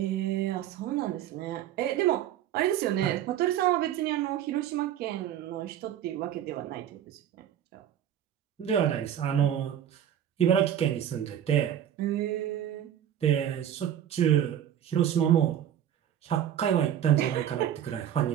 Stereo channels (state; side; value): quieter; left; 10.4 dB